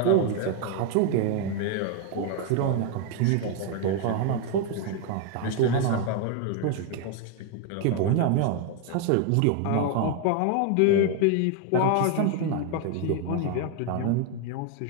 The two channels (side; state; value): both; different; correlation 0.01